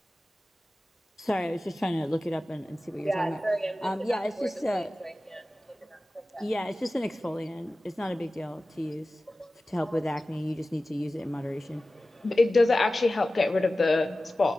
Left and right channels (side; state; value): both; normal; correlation 0.96